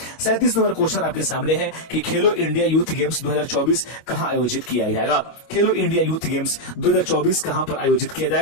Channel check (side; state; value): right; late; 25 ms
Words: 37 नंबर क्वेश्चन आपके सामने है कि खेलो इंडिया यूथ गेम्स 2024 कहां आयोजित किया जाएगा? खेलो इंडिया यूथ गेम्स 2024 कहां पर आयोजित किया